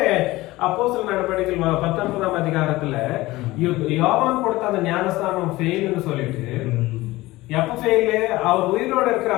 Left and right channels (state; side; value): quieter; right; 18.9 dB